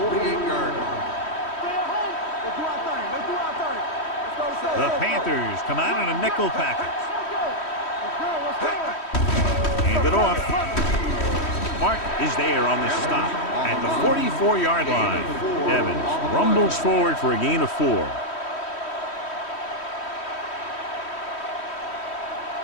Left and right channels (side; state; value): right; late; 3.1 ms